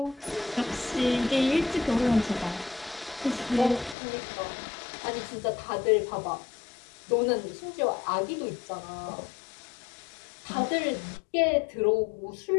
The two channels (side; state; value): right; drops out; at 4.0 s